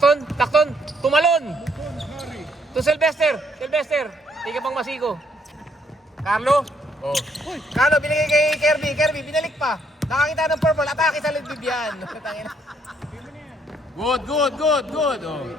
tumalon. To Sylvester. Tiga pang masigo. Carlo. Oh. Carlo, binigay kay Kirby, binalik pa. Nakakita ng purple, atake sa lidbib yan. Good. Oh.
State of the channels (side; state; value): both; normal; correlation 0.70